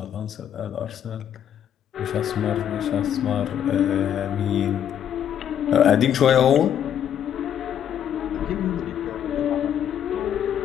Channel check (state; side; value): quieter; right; 9.6 dB